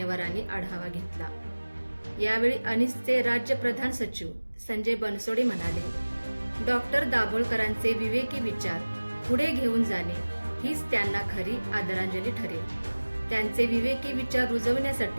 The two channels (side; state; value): both; inverted; correlation -1.00